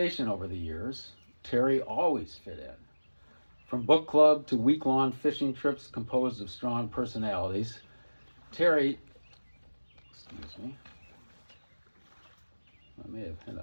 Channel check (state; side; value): inverted; both; correlation -1.00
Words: over the years, Terry always fit in. From book club to week-long fishing trips composed of strong personalities, Terry